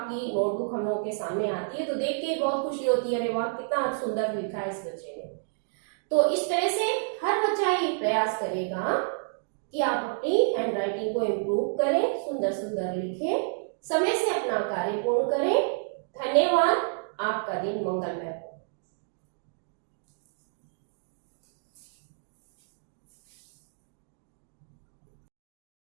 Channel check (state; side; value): silent; left; digital silence